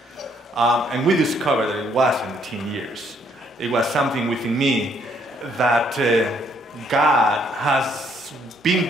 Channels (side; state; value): both; normal; correlation 0.68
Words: And we discovered that it wasn't teen years. It was something within me that God has been